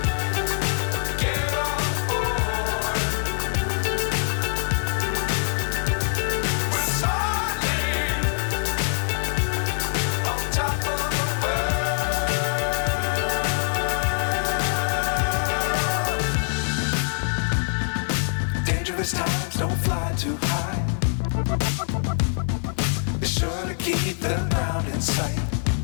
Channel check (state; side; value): silent; right; 62 dB below the other